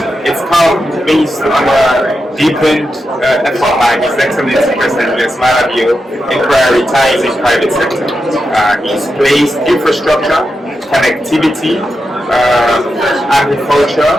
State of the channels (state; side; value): normal; both; correlation 0.88